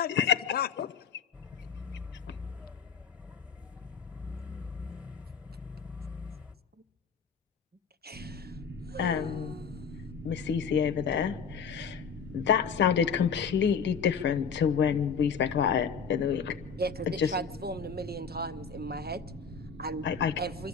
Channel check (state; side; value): quieter; right; 6.2 dB